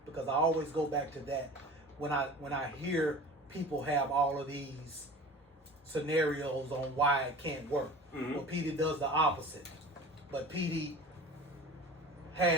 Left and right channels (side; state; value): both; normal; correlation 0.39